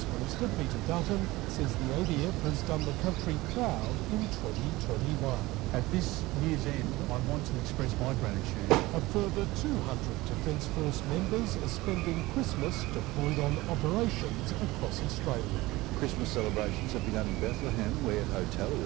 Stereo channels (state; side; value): quieter; left; 19.7 dB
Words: Minister Peter Dutton says the ADF has done the country proud in 2021. At this year's end, I want to express my gratitude. A further 200 Defence Force members are spending Christmas deployed on operations across Australia. Christmas celebrations have begun in Bethlehem, where